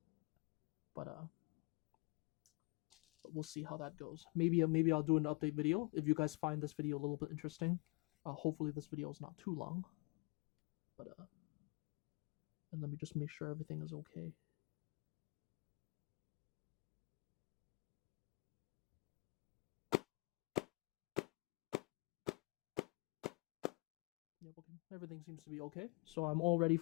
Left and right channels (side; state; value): right; quieter; 28.2 dB